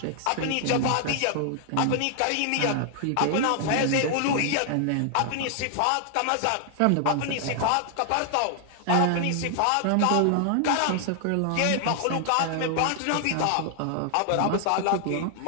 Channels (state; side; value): different; both; correlation 0.00